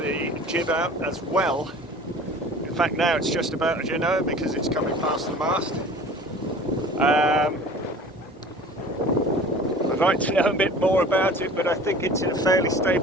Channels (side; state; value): both; normal; correlation 0.43